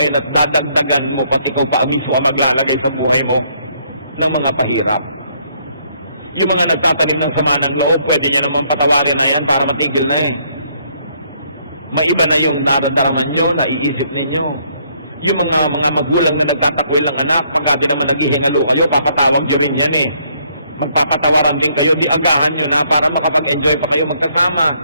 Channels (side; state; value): both; inverted; correlation -0.68